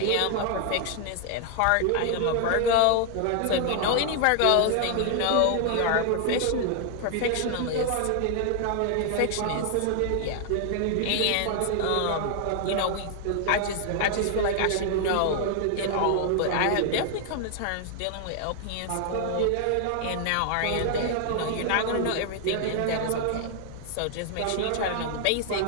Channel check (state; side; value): different; both; correlation 0.00